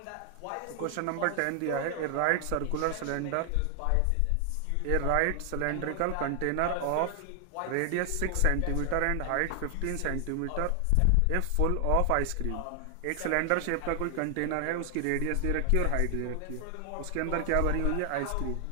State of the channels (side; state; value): both; different; correlation 0.00